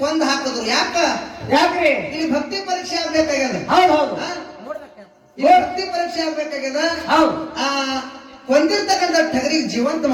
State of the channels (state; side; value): identical; both; correlation 1.00